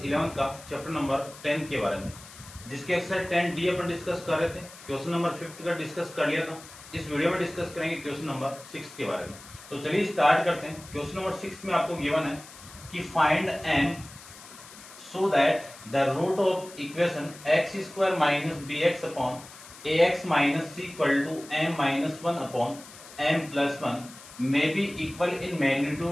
11 का चैप्टर नंबर 10 के बारे में, जिसके एक्सरसाइज 10D अपन डिस्कस कर रहे थे। क्वेश्चन नंबर 5 का डिस्कस कर लिया था। इस वीडियो में डिस्कस करेंगे क्वेश्चन नंबर 6 के बारे में। तो चलिए स्टार्ट करते हैं। क्वेश्चन नंबर 6 में आपको गिवन है कि find m so that the root of equation x square minus bx upon ax minus c equal to m minus 1 upon m plus 1 may be equal in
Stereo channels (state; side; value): noise; left; hiss, 18 dB below the sound